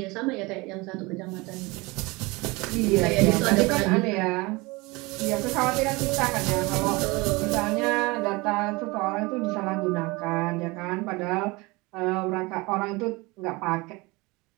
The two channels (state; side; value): quieter; left; 24.3 dB